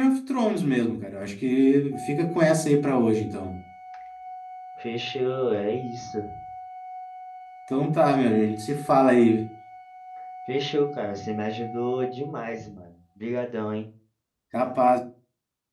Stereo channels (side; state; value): both; identical; correlation 1.00